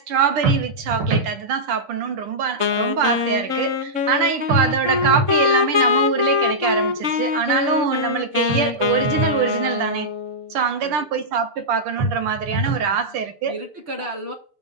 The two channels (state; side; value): late; left; 6.8 ms